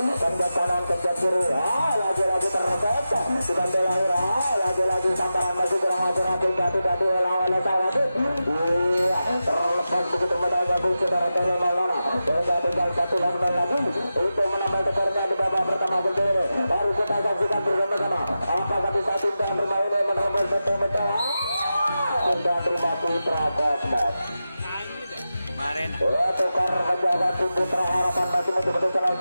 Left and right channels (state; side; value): inverted; both; correlation -0.91